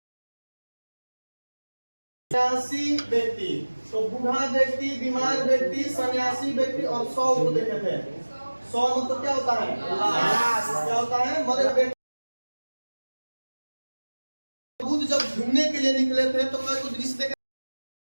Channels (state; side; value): inverted; both; correlation -1.00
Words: व्यक्ति। तो बूढ़ा व्यक्ति, बीमार व्यक्ति, सन्यासी व्यक्ति और 100 को देखे थे। 100 मतलब क्या होता है? क्या होता है? मरे व्यक्ति। बुद्ध जब घूमने के लिए निकले थे तो कई दृश्य देखे।